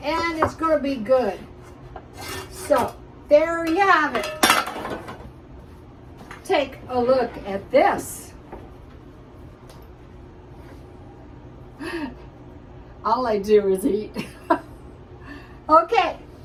and it's going to be good. So there you have it. Take a look at this. All I do is eat. Okay,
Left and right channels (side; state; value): both; identical; correlation 1.00